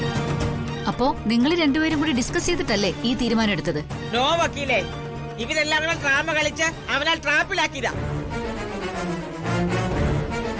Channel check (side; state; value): both; identical; correlation 1.00